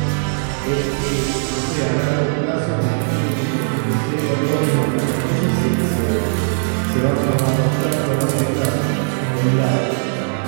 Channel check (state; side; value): silent; left; 58 dB below the other